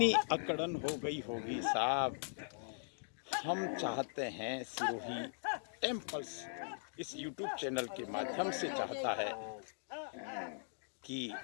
अकड़न हो गई होगी साहब। हम चाहते हैं, सिरोही टेम्पल्स इस YouTube चैनल के माध्यम से चाहता है कि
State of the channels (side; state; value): right; silent; digital silence